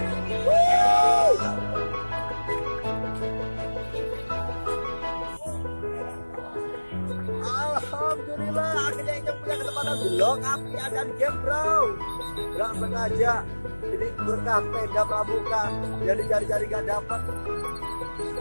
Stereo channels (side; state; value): both; inverted; correlation -1.00